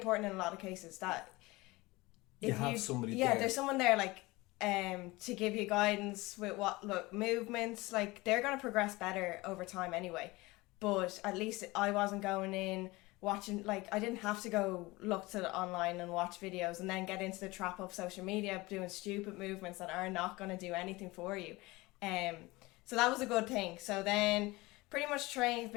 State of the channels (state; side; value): quieter; right; 21.6 dB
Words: in a lot of cases. That if you have somebody there. there's someone there, like, to give you guidance with movements. Like, they're going to progress better over time anyway. But at least I wasn't going in watching, like, I didn't have to go look to online and watch videos and then get into the trap of social media doing stupid movements that are not going to do anything for you. So that was a good thing. So then pretty much